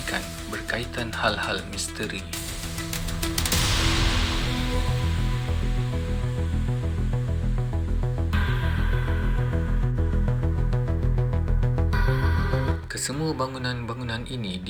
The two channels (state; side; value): identical; both; correlation 1.00